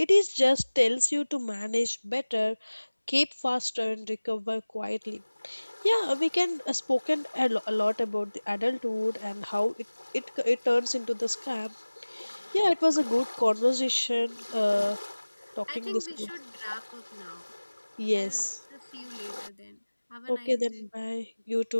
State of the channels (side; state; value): both; inverted; correlation -1.00